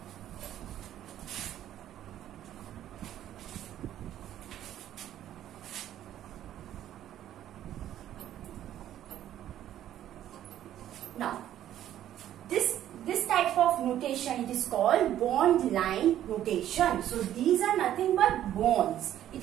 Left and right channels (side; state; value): left; quieter; 11.8 dB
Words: notation. It is called bond line notation. So these are nothing but bonds.